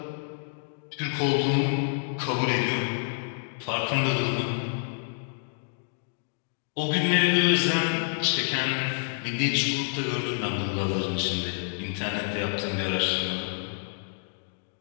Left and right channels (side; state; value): right; silent; digital silence